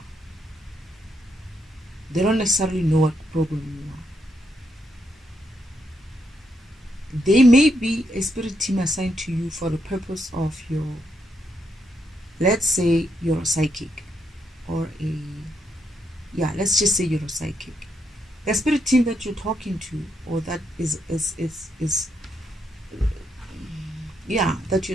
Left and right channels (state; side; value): normal; both; correlation 0.78